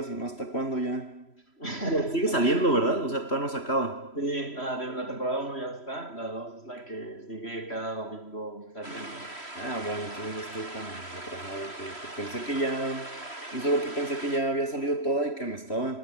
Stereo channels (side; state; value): right; late; 3.1 ms